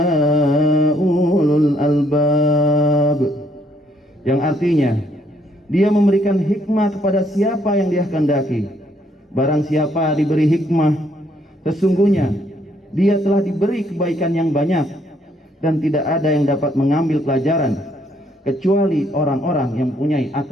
ulul albab. Yang artinya, Dia memberikan hikmah kepada siapa yang Dia kehendaki. Barang siapa diberi hikmah, sesungguhnya dia telah diberi kebaikan yang banyak, dan tidak ada yang dapat mengambil pelajaran kecuali orang-orang yang mempunyai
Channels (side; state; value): both; normal; correlation 0.69